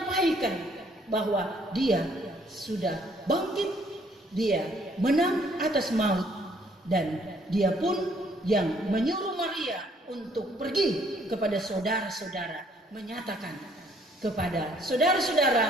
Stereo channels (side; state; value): both; normal; correlation 0.64